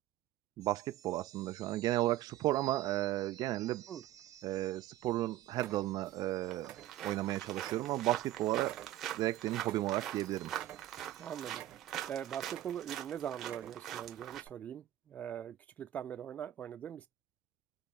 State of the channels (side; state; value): left; quieter; 14.1 dB